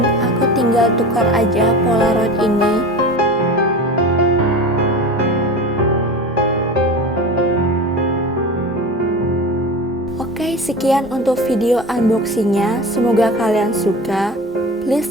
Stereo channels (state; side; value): normal; both; correlation 0.31